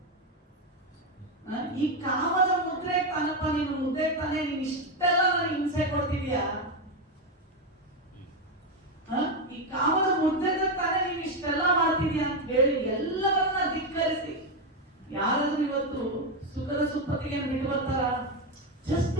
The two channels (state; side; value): normal; both; correlation 0.08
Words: ಈ ಕಾಮದ ಮುದ್ರೆ ತಾನಪ್ಪ, ನೀನು ಮುದ್ದೆ ತಾನೆ, ನೀನ್ ಇಷ್ಟೆಲ್ಲ ನನಗೆ ಹಿಂಸೆ ಕೊಡ್ತಿದ್ಯಾ? ಈ ಕಾಮದ ಮುದ್ದೆ ತಾನೆ ನೀನ್ ಇಷ್ಟೆಲ್ಲ ಮಾಡ್ತಿದ್ಯಾ ಅಂತ ಹೇಳಿ ಎಲ್ಲವನ್ನ ಧಿಕ್ಕರಿಸಿ ಯಾರಾದ್ರೂ ಇವತ್ತು ಸುಖದ ಸುಪ್ಪತ್ತಿಗೆ ಬಿಟ್ಟು ಬರ್ತಾರ? ಜಸ್ಟ್